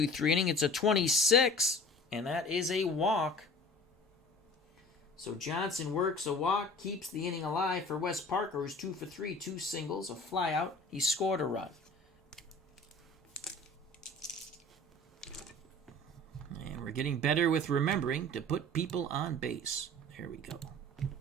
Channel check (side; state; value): both; normal; correlation 0.44